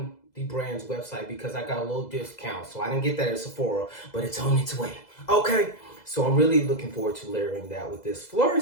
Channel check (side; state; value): right; late; 2.0 ms